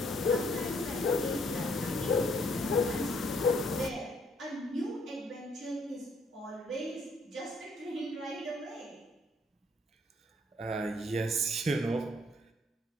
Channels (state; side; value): normal; both; correlation 0.66